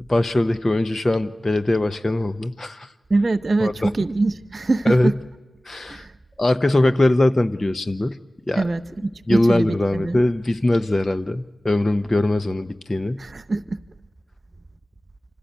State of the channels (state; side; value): normal; both; correlation 0.97